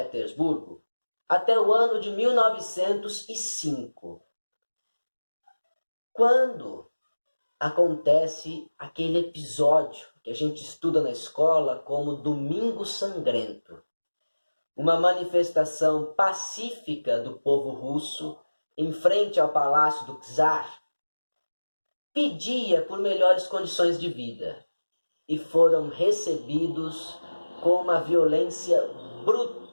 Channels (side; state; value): both; inverted; correlation -1.00